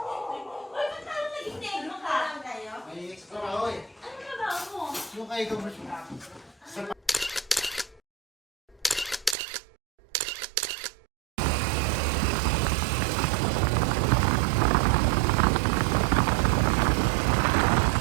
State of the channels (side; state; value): left; drops out; at 9.3 s